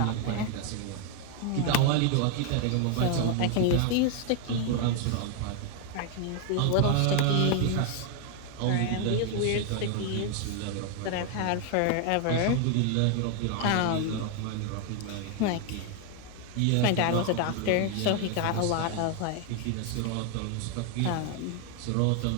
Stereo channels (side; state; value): both; different; correlation 0.00